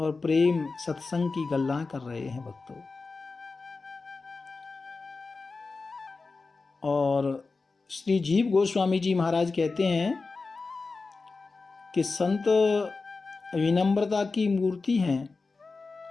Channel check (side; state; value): right; quieter; 4.0 dB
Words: प्रेम सत्संग की गल्ला कर रहे हैं भक्तों। और श्री जीव गोस्वामी जी महाराज कहते हैं कि संत विनम्रता की मूर्ति हैं